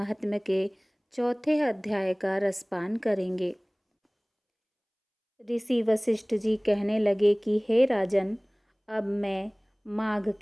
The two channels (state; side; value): identical; both; correlation 1.00